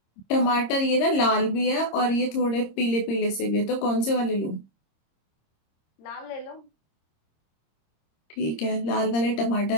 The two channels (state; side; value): late; right; 26 ms